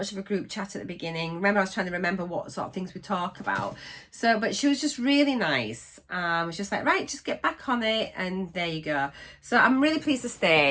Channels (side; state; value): both; identical; correlation 1.00